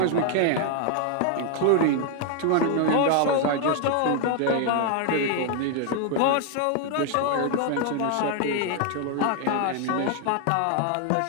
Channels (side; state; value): both; different; correlation 0.00